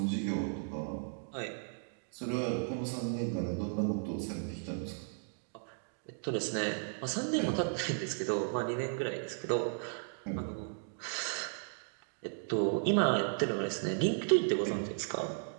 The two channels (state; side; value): silent; left; digital silence